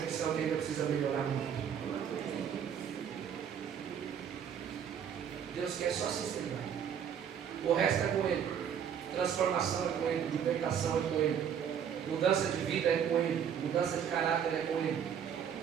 que ainda precisa melhorar muito? Deus quer só sinceridade. O resto é com Ele. Transformação é com Ele. Libertação é com Ele. Mudança de vida é com Ele. Mudança de caráter é com Ele.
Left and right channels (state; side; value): quieter; left; 8.3 dB